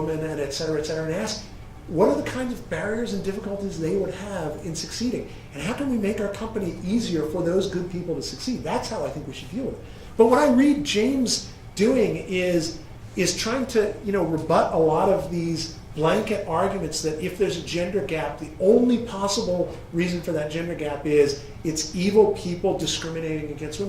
and et cetera, and ask, what are the kinds of barriers and difficulties they would have in succeeding? And how can we make our company easier for those good people to succeed? That's how I think we should deal with it. But what I read James doing is trying to rebut a lot of these blanket arguments that if there's a gender gap, the only possible reason for that gender gap is it's evil people discriminating against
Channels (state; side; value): identical; both; correlation 1.00